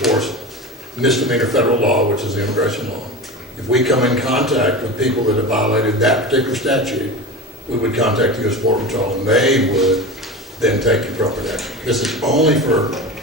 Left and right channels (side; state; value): both; normal; correlation 0.27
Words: misdemeanor federal law, which is the immigration law. If we come in contact with people that have violated that particular statute, we would contact the U.S. Border Patrol, and they would then take appropriate action. This is only for